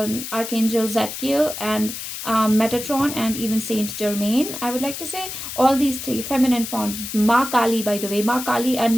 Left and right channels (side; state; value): left; noise; hiss, 8 dB below the sound